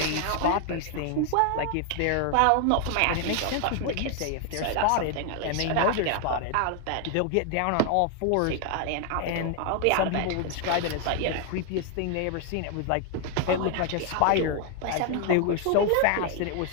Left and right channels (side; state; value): both; different; correlation 0.00